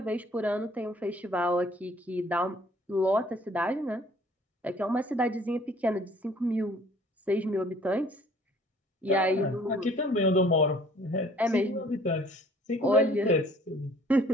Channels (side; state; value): both; normal; correlation 0.55